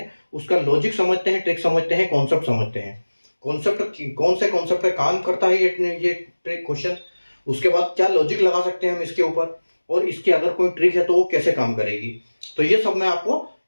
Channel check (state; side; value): inverted; both; correlation -1.00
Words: उसका लॉजिक समझते हैं, ट्रिक समझते हैं, कॉन्सेप्ट समझते हैं। कॉन्सेप्ट कौन से कॉन्सेप्ट पे काम करता है ये ट्रिक क्वेश्चन, उसके बाद क्या लॉजिक लगा सकते हैं हम इसके ऊपर, और इसकी अगर कोई ट्रिक है तो वो कैसे काम करेगी। तो ये सब मैं आपको